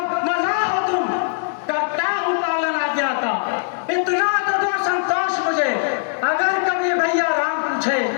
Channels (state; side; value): silent; right; digital silence